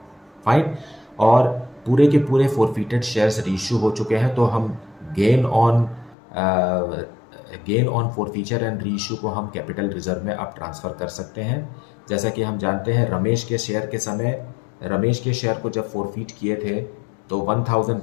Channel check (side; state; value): right; drops out; at 6.2 s